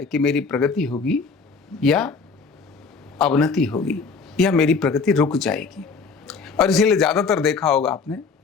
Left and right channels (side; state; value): right; quieter; 4.8 dB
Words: कि मेरी प्रगति होगी या अवनति होगी या मेरी प्रगति रुक जाएगी। और इसीलिए ज़्यादातर देखा होगा आपने,